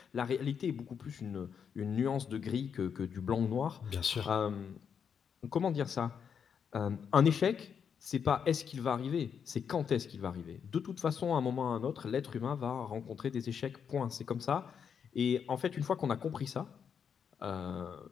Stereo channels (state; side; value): quieter; right; 7.2 dB